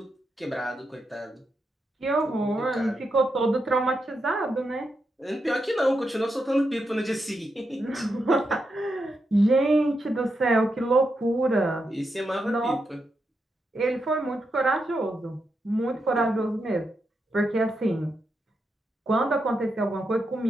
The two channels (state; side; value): normal; both; correlation 0.85